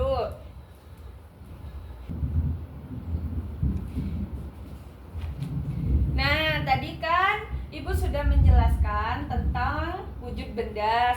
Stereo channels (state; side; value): identical; both; correlation 1.00